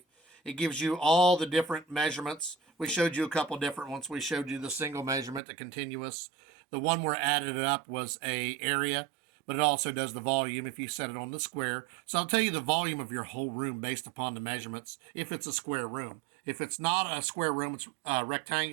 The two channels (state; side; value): drops out; left; at 5.4 s